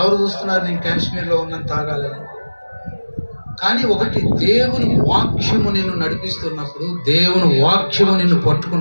చూస్తున్నారు నేను కాశ్మీర్లో ఉన్నాను తాగాలని? కానీ ఒకటి, దేవుని వాక్యము నిన్ను నడిపిస్తున్నప్పుడు, దేవుని వాక్యము నిన్ను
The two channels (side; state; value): both; inverted; correlation -1.00